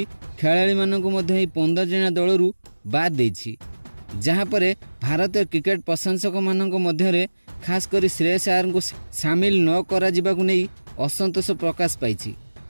खेलाड़ी मानू 15 जणिया दलरू बाद देछि। जहाँ पर भारतीय क्रिकेट प्रशंसक मानक मध्य खास कर श्रेयस अय्यर को सामिल न करा जिबाकु नहीं असंतोष प्रकाश पाई,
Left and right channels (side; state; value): both; inverted; correlation -1.00